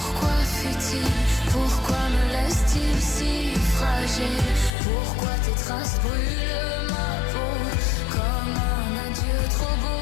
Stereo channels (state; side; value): drops out; right; at 4.7 s